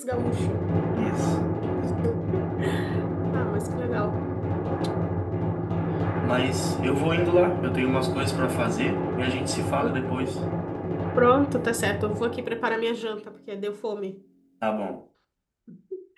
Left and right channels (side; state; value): both; identical; correlation 1.00